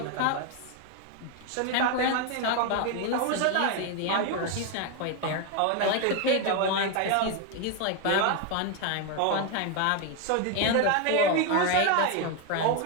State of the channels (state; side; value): different; both; correlation 0.01